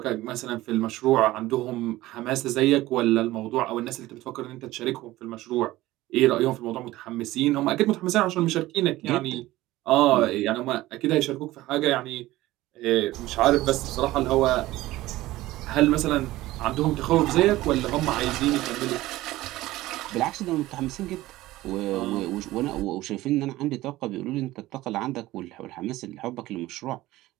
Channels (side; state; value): left; quieter; 17.1 dB